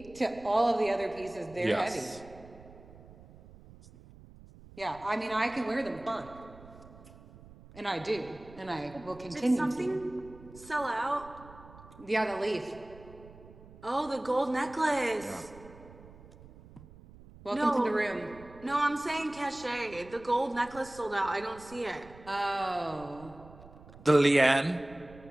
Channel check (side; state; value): right; noise; rumble, 20 dB below the sound